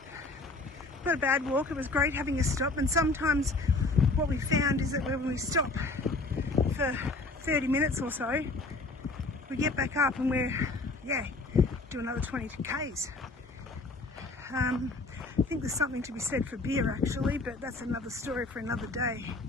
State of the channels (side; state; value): right; quieter; 3.2 dB